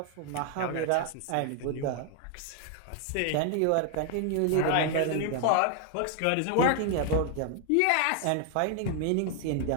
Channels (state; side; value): different; both; correlation 0.00